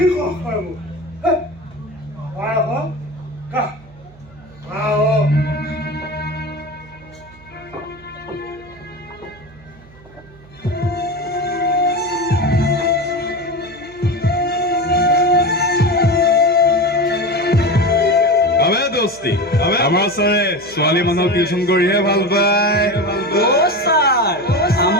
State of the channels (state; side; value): noise; right; hum, 24 dB below the sound